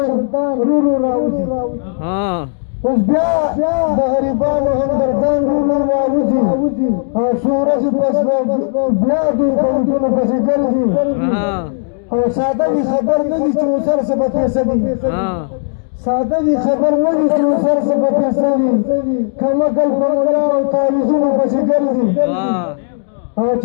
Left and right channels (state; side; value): silent; right; digital silence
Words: رورو راوځي اوس بیا د غریبانو همدردان رورو راوځي او څو ورځې پس بیا دوی په وټونو پسې ګرځي او ساده وي خبر نه دي چې اوسر څه به پیسه دي ساده وي خبر نه دي چې اوسر څه به پیسه دي کمکل په ملا او تعویذونو پسې ګرځي او